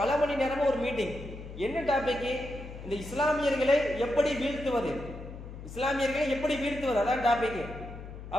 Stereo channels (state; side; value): noise; left; hum, 12 dB below the sound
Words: மணி நேரமும் ஒரு மீட்டிங். என்ன டாபிக்? இந்த இஸ்லாமியர்களை எப்படி வீழ்த்துவது, அதான் டாபிக்.